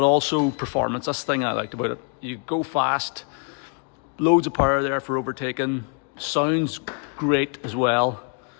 also performance. That's the thing I liked about it. You go fast, loads of power there for overtaking, sounds great as well,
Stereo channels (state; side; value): quieter; right; 39.2 dB